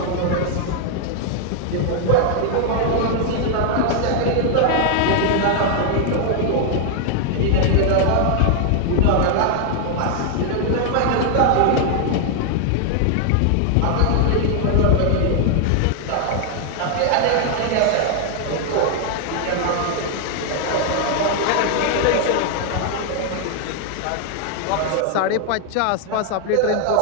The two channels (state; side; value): different; both; correlation 0.00